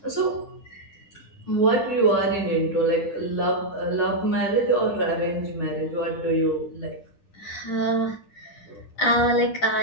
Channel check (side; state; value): right; late; 9.8 ms